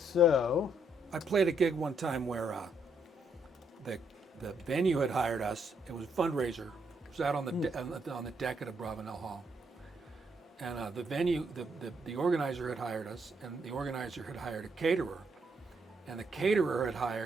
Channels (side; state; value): both; normal; correlation 0.74